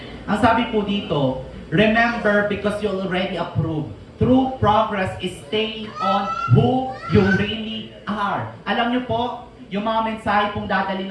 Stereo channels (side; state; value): both; identical; correlation 1.00